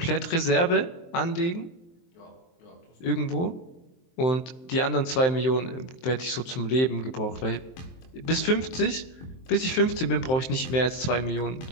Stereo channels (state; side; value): late; right; 23 ms